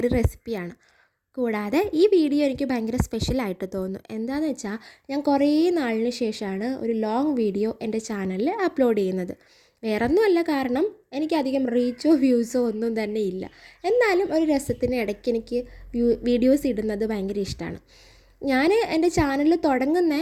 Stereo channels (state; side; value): identical; both; correlation 1.00